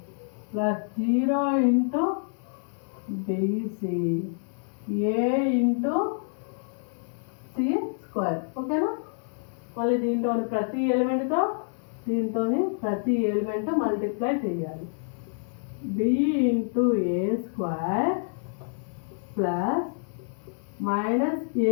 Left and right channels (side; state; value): right; silent; 60 dB below the other